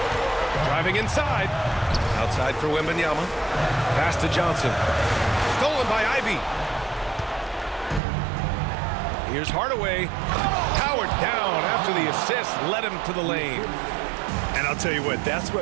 Driving inside. Outside for Wembanyama. Pass to Johnson. Stolen by Ivy. Here's Hardaway. Powered down after the assist led him to the lane. And I'll tell you what, that's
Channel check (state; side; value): drops out; left; at 8.0 s